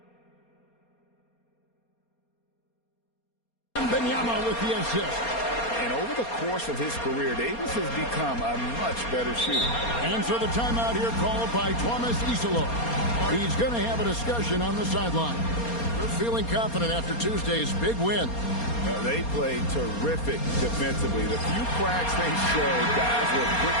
Wembanyama with the assist. And over the course of his career, Davis has become a much better shooter. And so the timeout here called by Thomas Isolo. He's going to have a discussion on the sideline. They're feeling confident after Tuesday's big win. They played terrific defensively. The few cracks they showed, guys were quick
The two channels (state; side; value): late; right; 4.3 ms